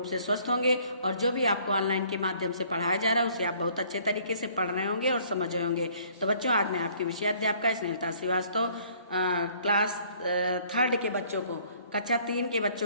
से स्वस्थ होंगे और जो भी आपको ऑनलाइन के माध्यम से पढ़ाया जा रहा है उसे आप बहुत अच्छे तरीके से पढ़ रहे होंगे और समझ रहे होंगे। तो बच्चों, आज मैं आपकी विषयाध्यापिका स्नेहलता श्रीवास्तव क्लास 3rd के बच्चों को, कक्षा 3 के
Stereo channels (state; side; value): inverted; both; correlation -0.59